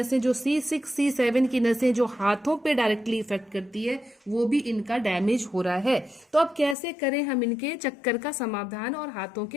जो C6 C7 की नसें जो हाथों पे डायरेक्टली इफेक्ट करती है वो भी इनका डैमेज हो रहा है। तो अब कैसे करें हम इनके चक्कर का समाधान और हाथों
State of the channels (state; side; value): drops out; right; at 6.8 s